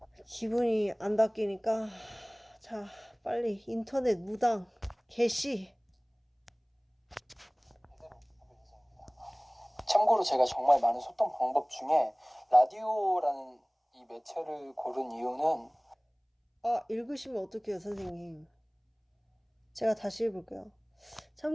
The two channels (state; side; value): identical; both; correlation 1.00